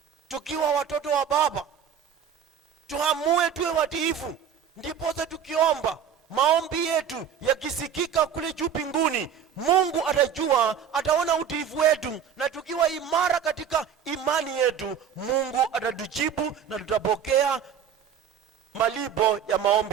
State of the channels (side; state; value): left; quieter; 8.3 dB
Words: tukiwa watoto wa baba, tuamue tuwe watiifu, ndipo tukiomba maombi yetu yakisikika kule juu mbinguni, Mungu atajua, ataona utiifu wetu, na tukiwa imara katika imani yetu, Mungu atatujibu na tutapokea malipo ya